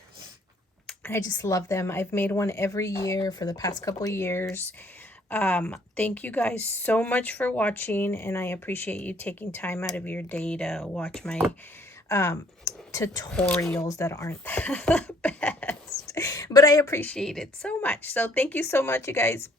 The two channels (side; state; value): both; normal; correlation 0.61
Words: I just love them. I've made one every year for the past couple of years. Thank you guys so much for watching, and I appreciate you taking time out of your day to watch my tutorials that aren't the best, but I appreciate it so much. So thank you so much, you guys.